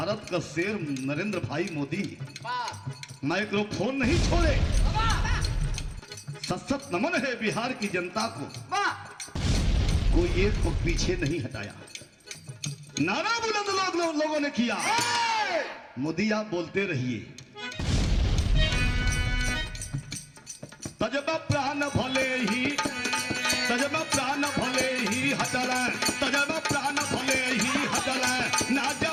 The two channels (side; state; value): both; identical; correlation 1.00